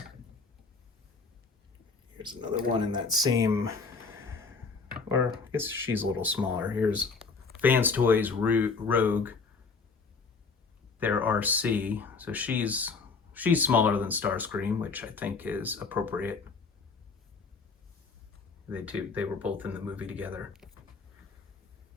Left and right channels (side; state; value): right; quieter; 4.6 dB